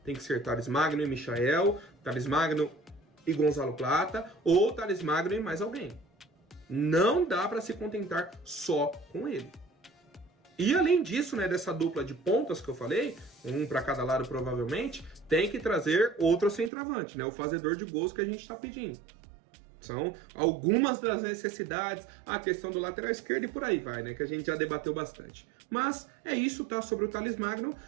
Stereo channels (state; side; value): drops out; left; at 16.7 s